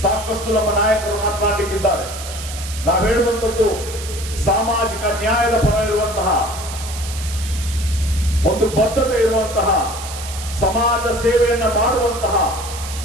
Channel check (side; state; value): right; noise; hiss, 11 dB below the sound